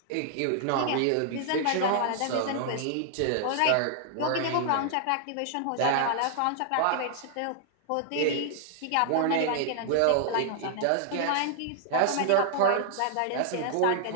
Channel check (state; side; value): different; both; correlation -0.01